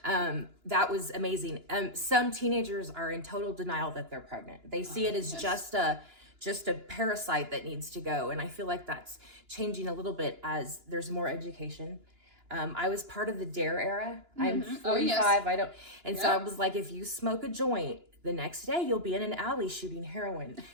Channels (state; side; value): late; left; 2.9 ms